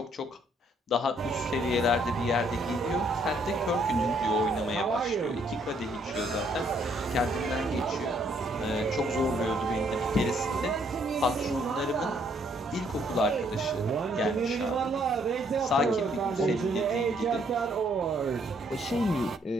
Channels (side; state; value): both; normal; correlation 0.68